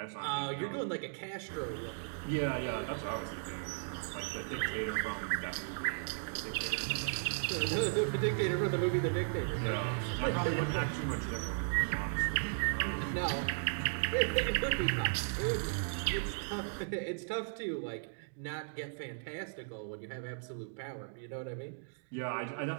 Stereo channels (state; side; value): silent; left; digital silence